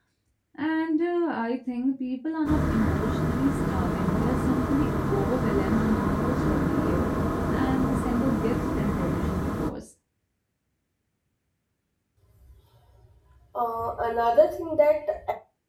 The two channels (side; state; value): both; identical; correlation 1.00